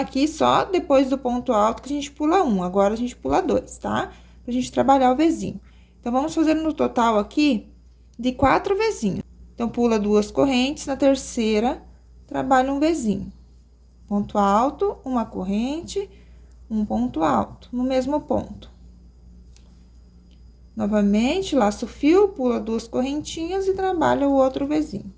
só depois do ponto alto que a gente pula um, agora a gente pula dois, tá? Pra gente trabalhar o Vzinho. Então, vamos fazer no total aqui de 4 Vzinhos. Então, pula duas correntes, na terceira, trabalha um Vzinho. Ponto alto, uma corrente, um ponto alto, no mesmo ponto. Novamente, laço o fio, pula duas correntinhas e trabalha o outro Vzinho.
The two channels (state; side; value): identical; both; correlation 1.00